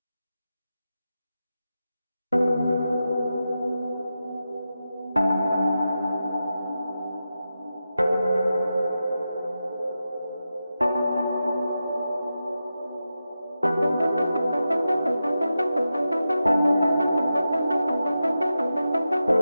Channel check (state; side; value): inverted; both; correlation -0.90